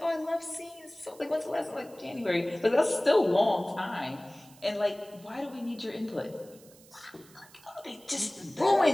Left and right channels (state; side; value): noise; right; hiss, 24 dB below the sound